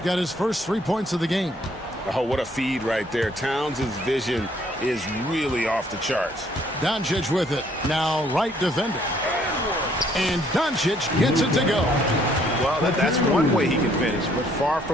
got his first 3 points of the game. Oh, what a feed right there. Towns' vision is really off the charts. Doncic with it. Now Wright defending. And Doncic gets it to go. Well, that's one way he can finish, but far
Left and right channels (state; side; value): normal; both; correlation 0.64